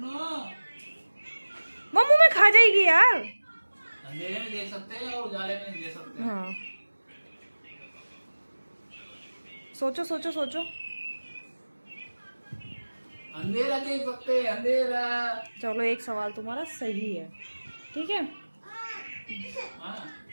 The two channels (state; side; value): inverted; both; correlation -1.00